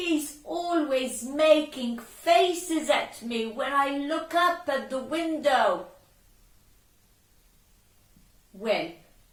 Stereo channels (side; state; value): both; identical; correlation 1.00